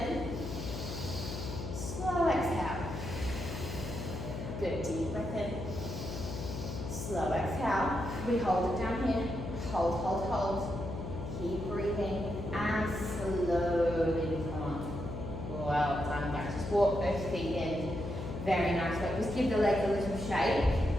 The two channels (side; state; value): left; noise; hum, 6 dB below the sound